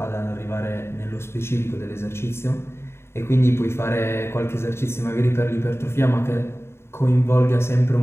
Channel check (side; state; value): right; late; 0.12 ms